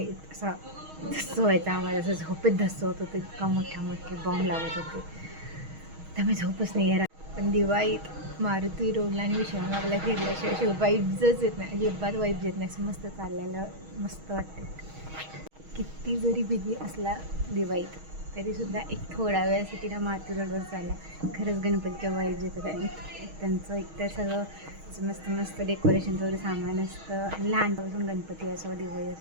असा धस्स व्हायचा आम्हाला, असं झोपेत धस्स होत होतं. इतका मोठे बॉम्ब लावत होते, त्यामुळे झोपच नाही आहे. पण दिवाळीत मारुती रोडला आणि विश्रामबागला फिरल्याशिवाय वाईब्सच येत नाही, अजिबात वाईब्स येत नाही. असं मस्त चाललेलं मस्त वाटतं. किती जरी बिझी असला दिवाळीत तरीसुद्धा एक थोडा वेळासाठी ना मारुती रोडवर चालला, खरंच गणपतीच्या वाईब्स येतात. आणि त्यांचं एकतर सगळं मस्त डेकोरेशनचं वगैरे सामान असतं. आणि लहानपासून गणपती असो दिवाळी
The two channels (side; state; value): left; late; 6.3 ms